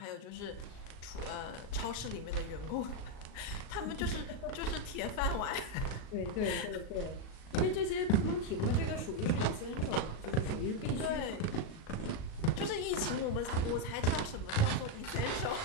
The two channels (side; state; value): right; late; 37 ms